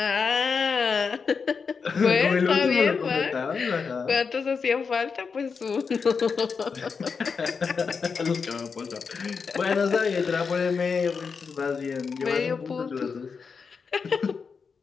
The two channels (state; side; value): quieter; right; 5.5 dB